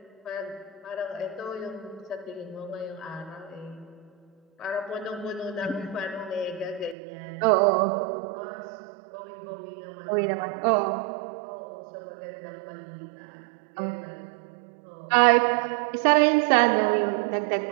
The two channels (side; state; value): left; drops out; at 7.0 s